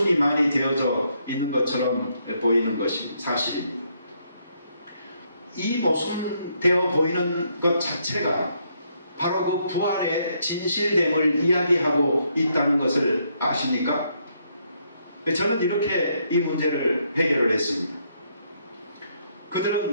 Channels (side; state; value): both; inverted; correlation -0.74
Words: 많이 되어져 있는 것처럼 보이는 것이 사실입니다. 이 모순되어 보이는 것 자체가 바로 그 부활의 진실됨을 이야기하고 있다는 것을 아십니까? 저는 이렇게 이 문제를 해결을 했습니다.